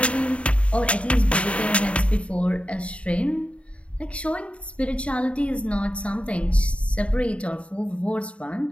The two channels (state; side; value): late; right; 0.062 ms